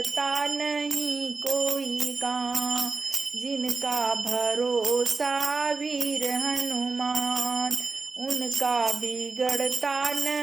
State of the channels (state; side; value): quieter; left; 4.2 dB